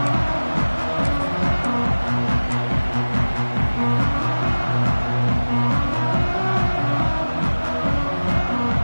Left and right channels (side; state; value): both; inverted; correlation -1.00